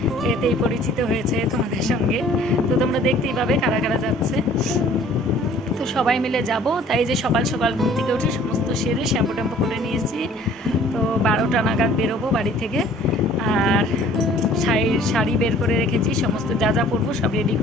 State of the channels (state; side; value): normal; both; correlation 0.53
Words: এতেই পরিচিত হয়েছে তোমাদের সঙ্গে। তো তোমরা দেখতেই পাবে কারা কারা যাচ্ছে। তো সবাই মিলে যাব, তাই যে সকাল সকাল ঘুম থেকে উঠে সমস্ত সেরে শ্যাম্পু ট্যাম্পু করে নিয়েছি। তো 12টা নাগাদ বেরোবো বাড়ি থেকে। আর শাড়ি বের করে রেখেছি, সমস্ত যা যা পরবো সব রেডি